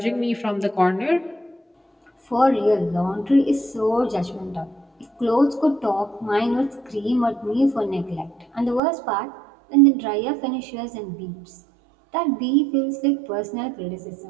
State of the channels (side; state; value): left; drops out; at 8.8 s